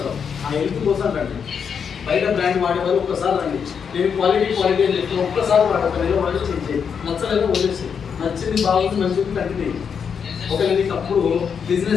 ఆ హెల్త్ కోసం రండి. బయట బ్రాండ్ వాడేవాళ్ళు ఒక్కసారి రండి. నేను క్వాలిటీ అని చెప్పి ఒక్కసారి వాడతాను. వాడి చేంజ్ నచ్చలేదు వదిలేసి, నచ్చింది బాగుంది మంచిది కంటిన్యూ. ఒకవేళ నీకు అప్పుడు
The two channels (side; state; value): right; quieter; 6.8 dB